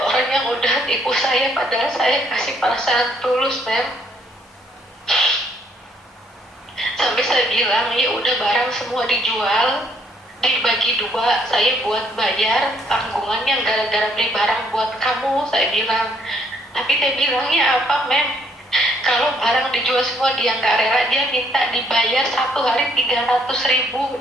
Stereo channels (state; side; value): normal; both; correlation 0.67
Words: orang yang udah tipu saya, padahal saya kasih perasaan tulus mem. Sampai saya bilang ya udah barang semua dijual, dibagi 2, saya buat bayar tanggungannya gara-gara beli barang buat kamu, saya bilang. Tapi dia bilangnya apa mem? Kalau barang dijual semua dia nggak rela, dia minta dibayar 1 hari 300.000